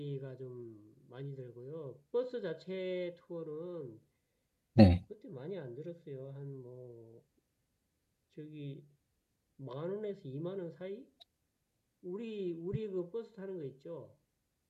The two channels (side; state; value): both; identical; correlation 1.00